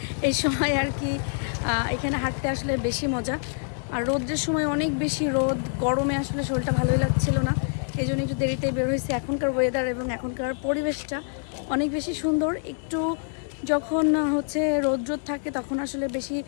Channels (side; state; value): right; silent; 61 dB below the other